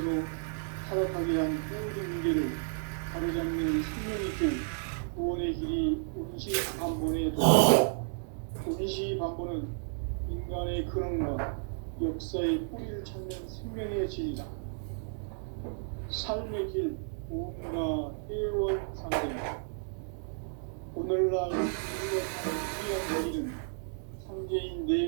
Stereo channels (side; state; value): left; silent; digital silence